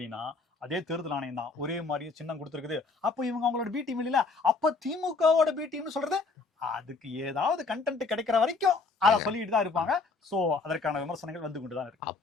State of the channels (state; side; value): quieter; right; 4.0 dB